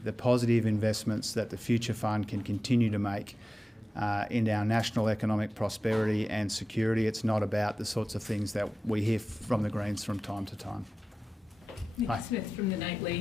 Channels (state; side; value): normal; both; correlation 0.95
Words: positive investments that the Future Fund can continue to make in our national economic prosperity and security. It's not about the sorts of things that we hear from the Greens from time to time. Nick Smith from The